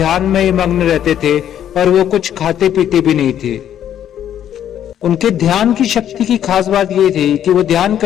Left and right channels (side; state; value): right; quieter; 10.3 dB